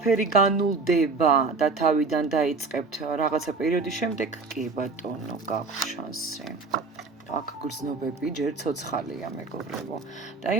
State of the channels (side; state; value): left; quieter; 4.1 dB